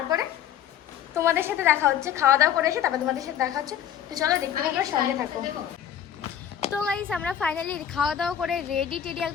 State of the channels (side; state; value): right; quieter; 9.9 dB